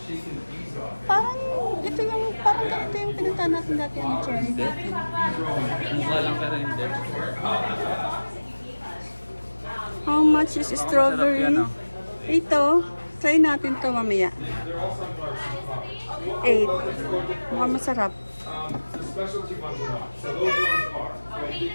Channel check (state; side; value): inverted; both; correlation -1.00